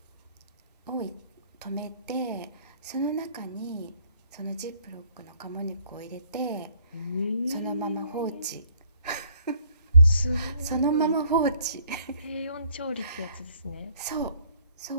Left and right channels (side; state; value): both; inverted; correlation -0.63